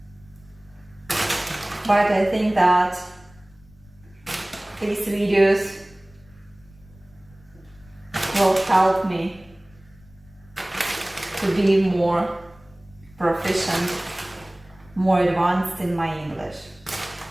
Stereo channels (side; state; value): left; noise; rumble, 26 dB below the sound